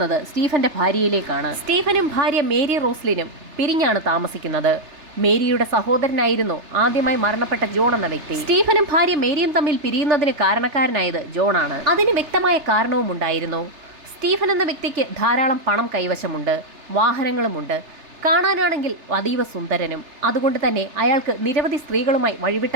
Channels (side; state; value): left; late; 3.3 ms